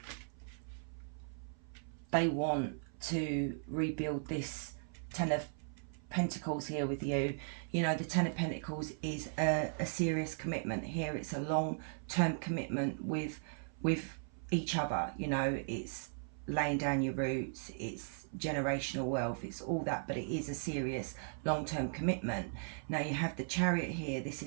they want to rebuild this 10 of Pentacles here with you. You know, the 10 of Pentacles is a serious commitment here. It's a long-term commitment with each other. You know, it's laying down your roots, it's generational wealth, it's all that, but it is a serious long-term commitment. Now you have the Chariot here. This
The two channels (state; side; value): silent; left; 53 dB below the other